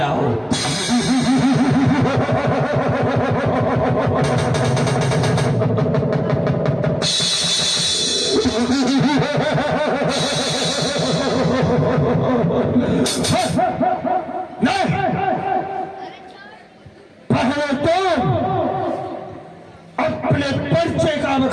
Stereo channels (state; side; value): identical; both; correlation 1.00